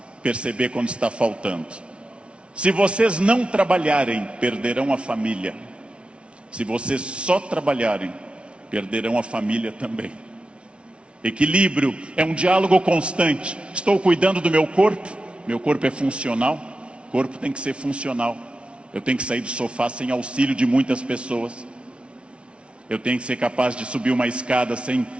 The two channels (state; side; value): late; left; 0.059 ms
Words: perceber quando está faltando. Se vocês não trabalharem, perderão a família. Se vocês só trabalharem, perderão a família também. Equilíbrio é um diálogo constante. Estou cuidando do meu corpo é funcional, o corpo tem que ser funcional. Eu tenho que sair do sofá sem auxílio de muitas pessoas. Eu tenho que ser capaz de subir uma escada sem